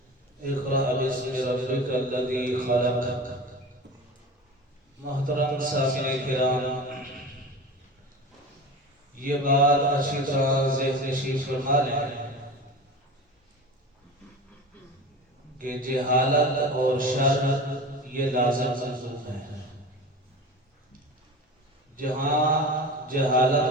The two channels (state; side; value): normal; both; correlation 0.33